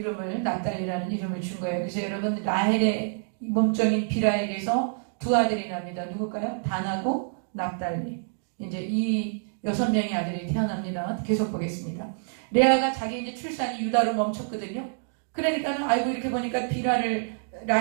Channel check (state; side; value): silent; left; digital silence